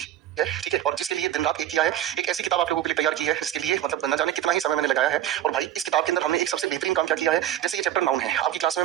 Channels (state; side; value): quieter; left; 11.8 dB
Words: ठीक है? और जिसके लिए दिन रात एक किया है, एक ऐसी किताब आप लोगों के लिए तैयार की है जिसके लिए मतलब न जाने कितना ही समय मैंने लगाया है। और भाई इस किताब के अंदर हमने एक सबसे बेहतरीन काम क्या किया है, जैसे ये चैप्टर नाउन है, आपकी क्लास में